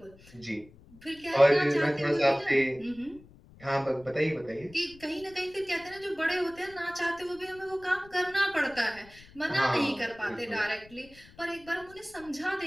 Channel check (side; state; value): left; noise; rumble, 23 dB below the sound